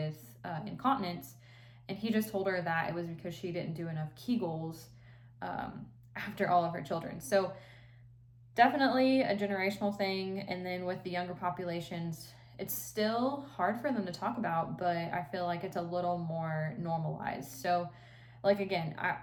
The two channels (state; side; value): identical; both; correlation 1.00